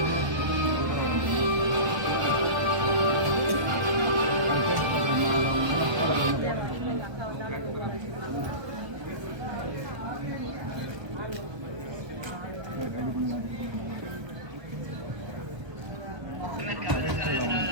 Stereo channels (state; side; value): late; left; 1.3 ms